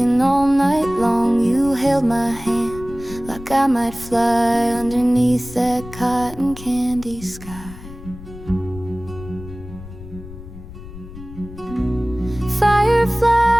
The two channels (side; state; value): left; noise; rumble, 15 dB below the sound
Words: all night long. You held my hand like I might fly underneath that cotton candy sky.